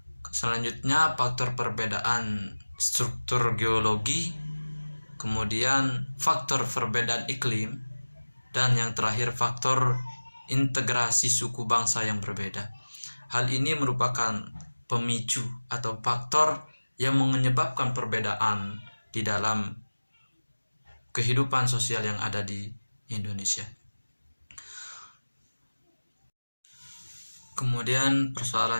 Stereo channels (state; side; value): inverted; both; correlation -1.00